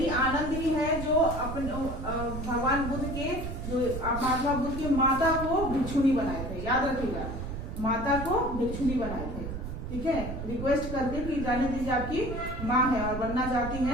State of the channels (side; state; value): right; noise; rumble, 6 dB below the sound